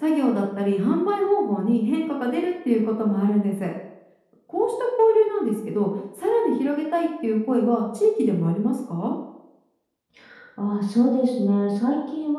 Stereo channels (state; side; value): identical; both; correlation 1.00